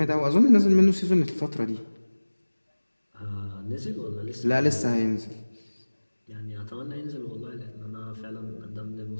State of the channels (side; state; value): both; inverted; correlation -1.00